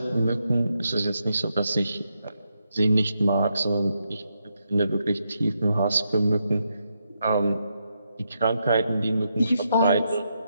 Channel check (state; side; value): inverted; both; correlation -0.82